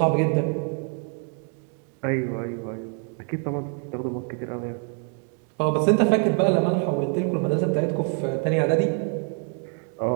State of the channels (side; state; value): left; quieter; 35.5 dB